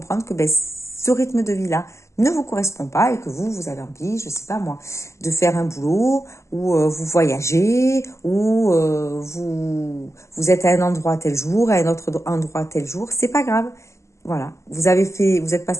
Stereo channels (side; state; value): right; late; 0.14 ms